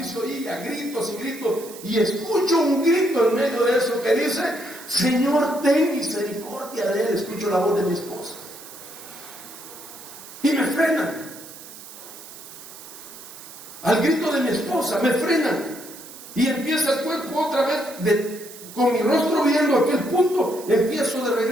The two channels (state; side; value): noise; right; hiss, 16 dB below the sound